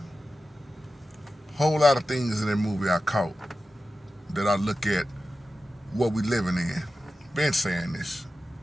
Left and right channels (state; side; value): normal; both; correlation 0.93